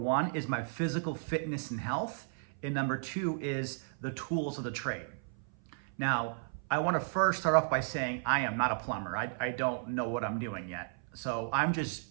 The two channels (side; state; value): left; silent; 55 dB below the other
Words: is my physical fitness and health, and number two is the tools of the trade. Now, I want to first start off by saying I am not a plumber. I don't know what I'm doing yet. So I'm just